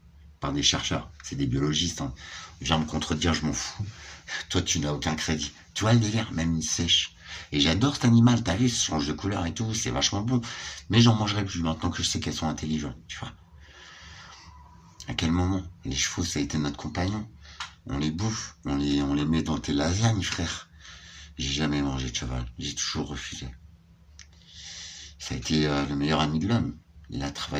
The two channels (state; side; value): identical; both; correlation 1.00